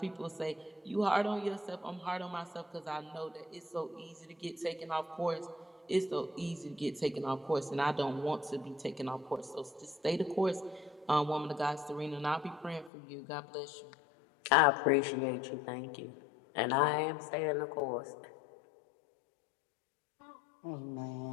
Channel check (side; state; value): right; drops out; at 12.9 s